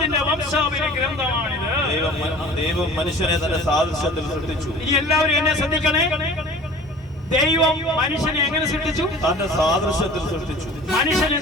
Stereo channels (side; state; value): both; normal; correlation 0.44